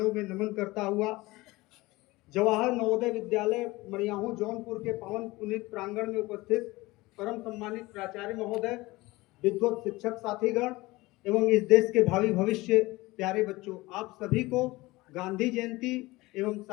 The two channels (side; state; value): right; quieter; 20.7 dB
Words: में नमन करता हुआ जवाहर नवोदय विद्यालय मड़ियाहू जौनपुर के पावन पुनीत प्रांगण में उपस्थित परम सम्मानित प्राचार्य महोदय, विद्वत शिक्षक साथीगण एवं इस देश के भावी भविष्य प्यारे बच्चों, आप सभी को गांधी जयंती एवं